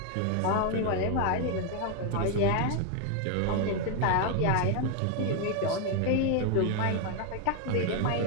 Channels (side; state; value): both; different; correlation 0.01